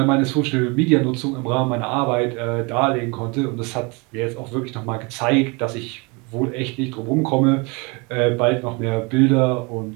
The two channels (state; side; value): quieter; left; 28.9 dB